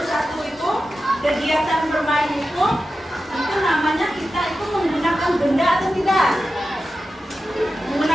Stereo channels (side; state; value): both; normal; correlation 0.92